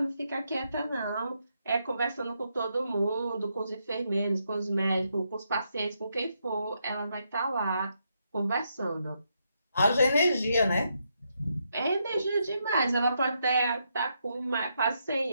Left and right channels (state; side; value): inverted; both; correlation -0.79